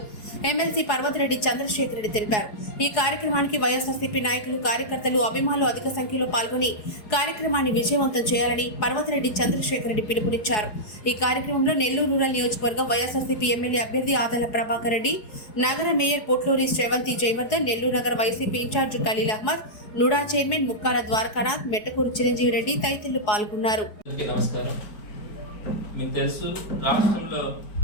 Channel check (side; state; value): right; late; 4.7 ms